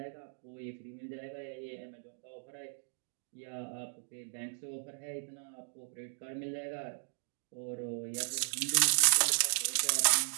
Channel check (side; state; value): left; silent; digital silence